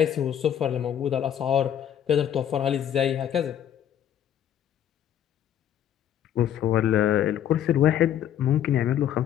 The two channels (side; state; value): right; quieter; 10.2 dB